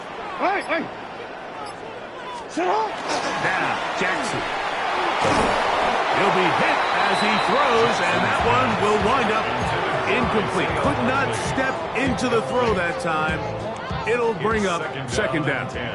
Hey. Sit up. Now, Jackson. He'll be hit as he throws, and that one will wind up incomplete. Could not step into the throw that time. It'll bring up second down.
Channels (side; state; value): both; identical; correlation 1.00